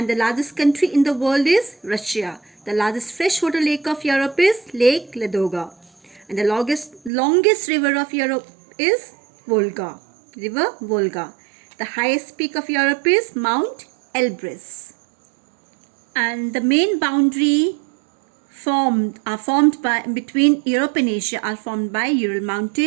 the largest country in the world is Russia. The largest freshwater lake of Europe is Lake Ladoga. And the longest river of Europe is Volga. River Volga. The highest peak of Europe is Mount Elbrus. And the main boundary between Europe and Asia are formed by Ural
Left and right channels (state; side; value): drops out; left; at 7.1 s